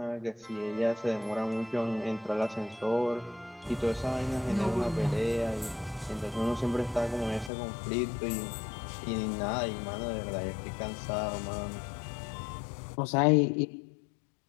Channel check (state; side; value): drops out; right; at 7.5 s